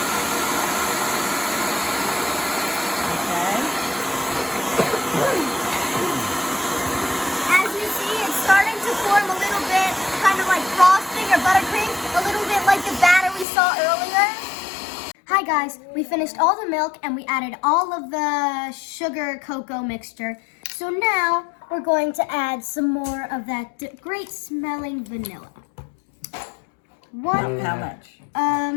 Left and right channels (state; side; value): drops out; right; at 13.5 s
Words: Okay. As you see, it's starting to form a little bit, kind of like frosting or buttercream, a little bit like the batter we saw earlier. Hi guys, we finished all the milk and we added all of the sugar cocoa mixture. So now we're going to add some more of that great smelling vanilla. How much?